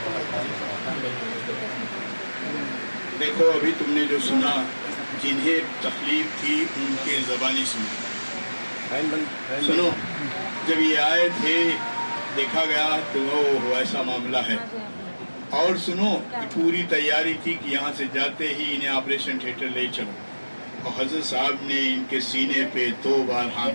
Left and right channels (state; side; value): inverted; both; correlation -1.00